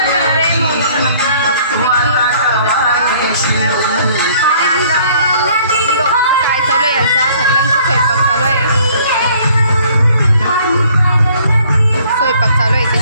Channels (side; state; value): both; inverted; correlation -0.58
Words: आहे म्हणून काय चालू आहे यांचा सगळ्यांचा स्वयंपाक चालू आहे. स्वयंपाक चालू आहे